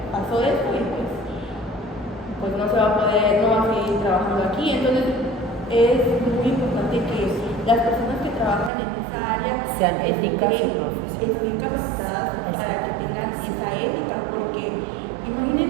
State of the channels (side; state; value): left; drops out; at 8.7 s